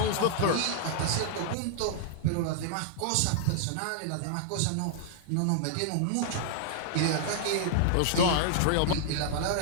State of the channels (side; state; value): both; different; correlation -0.01